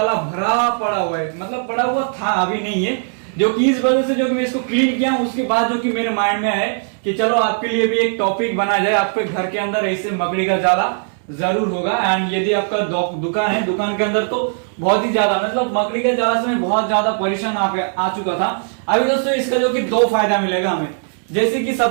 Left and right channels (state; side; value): silent; left; 67 dB below the other